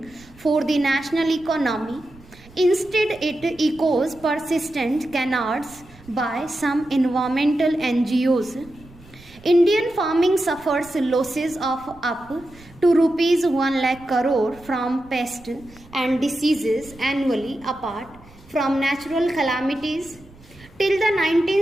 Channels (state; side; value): noise; right; rumble, 24 dB below the sound